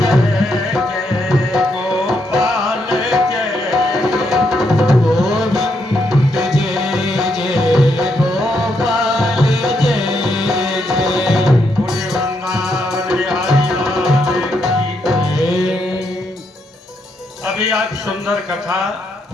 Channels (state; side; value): normal; both; correlation 0.78